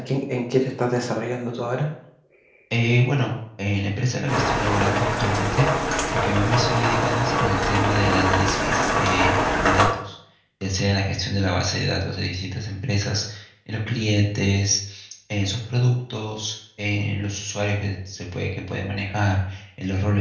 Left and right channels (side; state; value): both; identical; correlation 1.00